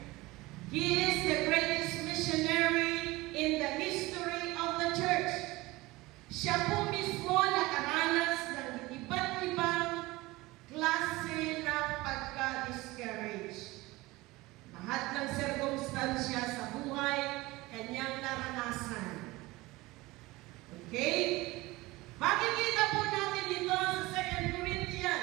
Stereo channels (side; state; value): left; quieter; 20.7 dB